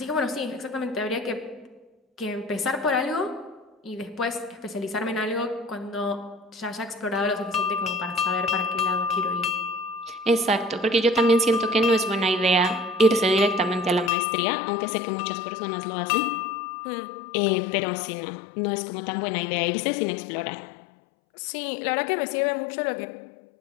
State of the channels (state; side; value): drops out; right; at 14.1 s